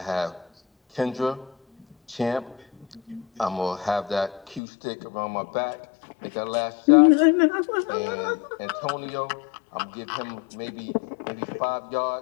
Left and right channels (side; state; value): right; drops out; at 4.6 s